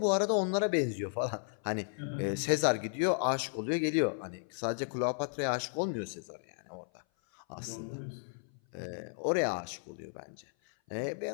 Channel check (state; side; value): silent; right; 55 dB below the other